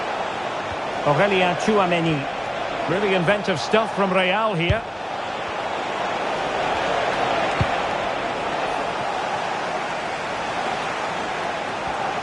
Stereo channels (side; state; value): both; identical; correlation 1.00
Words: Aurelien Tchouameni. Really inventive stuff from Real here.